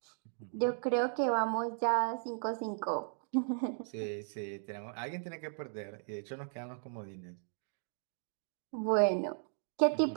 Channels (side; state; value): left; silent; digital silence